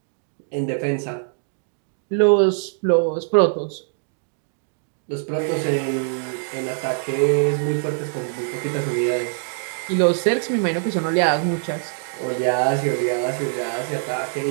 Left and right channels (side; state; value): left; silent; digital silence